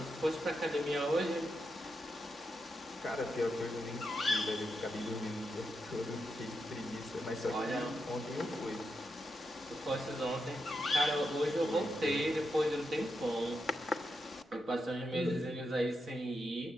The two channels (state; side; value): normal; both; correlation 0.85